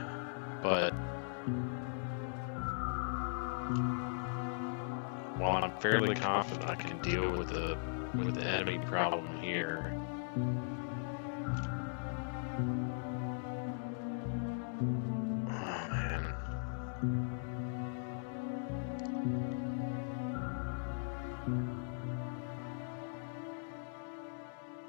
But while I'm fairly confident I can deal with the enemy problem here, oh man.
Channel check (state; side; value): silent; right; digital silence